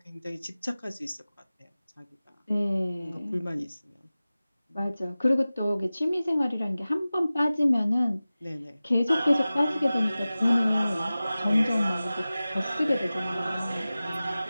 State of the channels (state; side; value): inverted; both; correlation -0.97